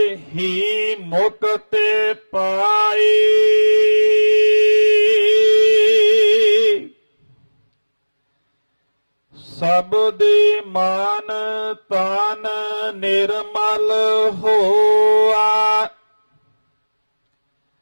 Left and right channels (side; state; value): both; inverted; correlation -1.00